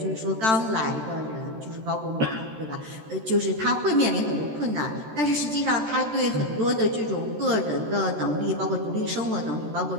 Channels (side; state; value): left; late; 13 ms